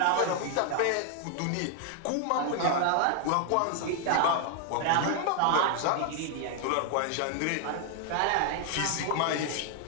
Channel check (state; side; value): different; both; correlation 0.00